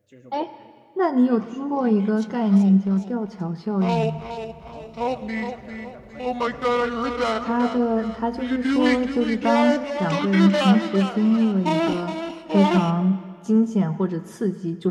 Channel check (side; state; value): both; identical; correlation 1.00